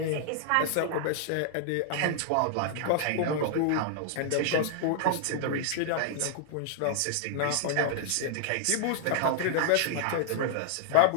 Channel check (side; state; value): both; different; correlation -0.01